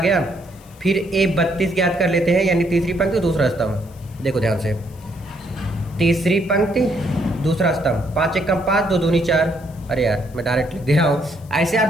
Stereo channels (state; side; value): noise; left; hiss, 27 dB below the sound